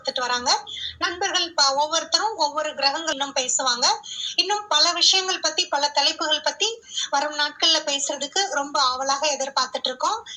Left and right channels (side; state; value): both; identical; correlation 1.00